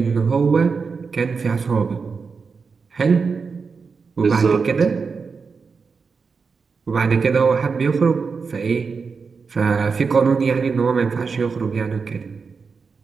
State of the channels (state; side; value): quieter; left; 5.1 dB